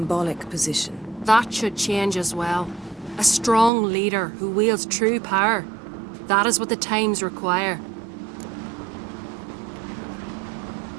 position. That should change as well. A strong leader who wields true power. That is what the times require.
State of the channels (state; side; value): drops out; left; at 3.7 s